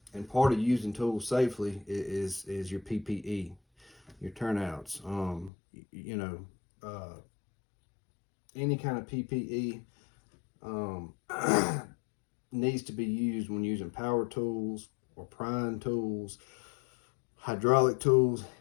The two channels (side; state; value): right; drops out; at 5.5 s